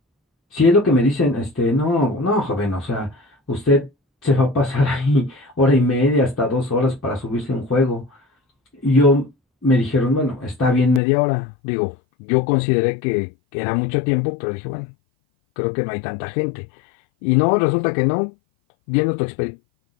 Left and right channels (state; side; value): drops out; right; at 11.0 s